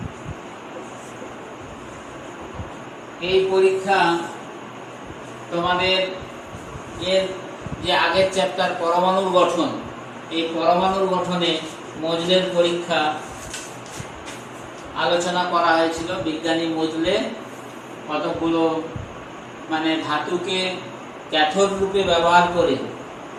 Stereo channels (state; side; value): identical; both; correlation 1.00